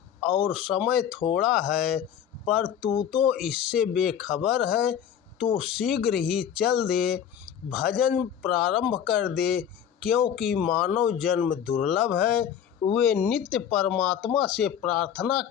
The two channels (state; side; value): quieter; right; 9.0 dB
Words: और समय थोड़ा है, पर तू तो इससे बेखबर है। तू शीघ्र ही चल दे, भजन प्रारंभ कर दे, क्योंकि मानव जन्म दुर्लभ है। वे नित्य परमात्मा से प्रार्थना